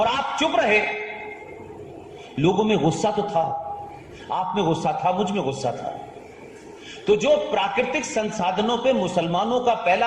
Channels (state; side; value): identical; both; correlation 1.00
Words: आप चुप रहे। लोगों में गुस्सा तो था, आप में गुस्सा था, मुझ में गुस्सा था। तो जो प्राकृतिक संसाधनों पे मुसलमानों का पहला